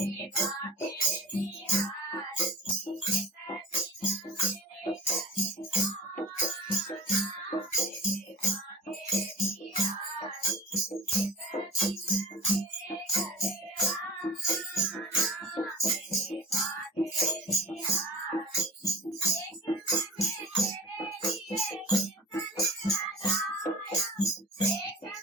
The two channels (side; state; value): both; normal; correlation 0.39